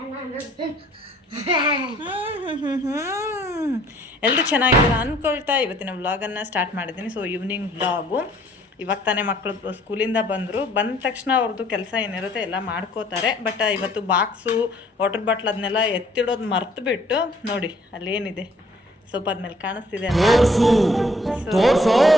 ಎಲ್ಲರೂ ಚೆನ್ನಾಗಿದ್ದೀರಾ ಅಂದ್ಕೊಳ್ತಾ ಇವತ್ತಿನ ವ್ಲಾಗನ್ನು ಸ್ಟಾರ್ಟ್ ಮಾಡಿದ್ದೀನಿ. So evening vlog. ಇವಾಗ ತಾನೇ ಮಕ್ಕಳು ಸ್ಕೂಲಿಂದ ಬಂದ ತಕ್ಷಣ ಅವ್ರದ್ದು ಕೆಲಸ ಏನಿರುತ್ತೆ ಎಲ್ಲ ಮಾಡ್ಕೋತಾರೆ. ಬಟ್ ಇವತ್ತು ಬಾಕ್ಸು, ವಾಟರ್ ಬಾಟ್ಲ್ ಅದನ್ನೆಲ್ಲ ಎತ್ತಿಡೋದು ಮರ್ತು ಬಿಟ್ಟು ನೋಡಿ ಅಲ್ಲೇನಿದೆ ಸೋಫಾದ ಮೇಲೆ ಕಾಣಿಸ್ತಿದೆ.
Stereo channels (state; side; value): normal; both; correlation 0.60